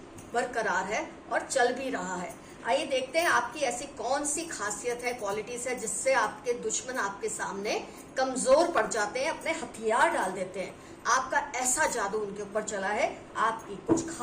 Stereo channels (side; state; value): both; identical; correlation 1.00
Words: बरकरार है और चल भी रहा है। आइए देखते हैं आपकी ऐसी कौन सी खासियत है, क्वालिटीज है जिससे आपके दुश्मन आपके सामने कमजोर पड़ जाते हैं, अपने हथियार डाल देते हैं। आपका ऐसा जादू उनके ऊपर चला है आपकी कुछ